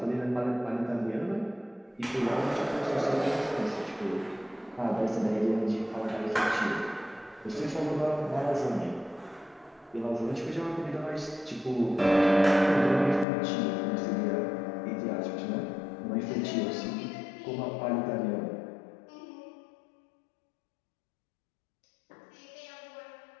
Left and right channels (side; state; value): right; drops out; at 13.2 s